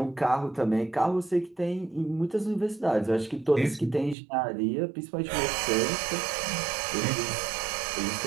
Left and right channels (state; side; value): drops out; left; at 4.2 s